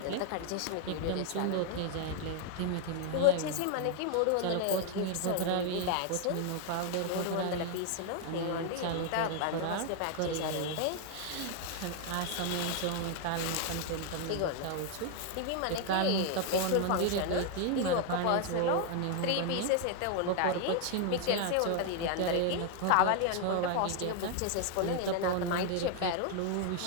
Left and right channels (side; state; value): both; different; correlation 0.00